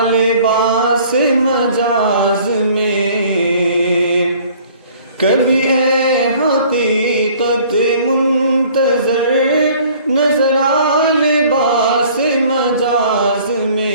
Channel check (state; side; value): inverted; both; correlation -0.53